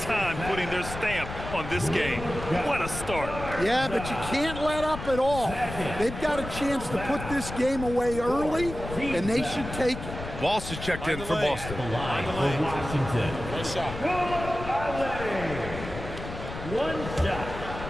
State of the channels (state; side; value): noise; left; rumble, 9 dB below the sound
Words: time putting their stamp on this game. What a start. Yeah, but you can't let up at all. They've got a chance to put this game away early, and they should take it. Walsh is checked in for Boston. The line for Washington. Nice shot. One shot.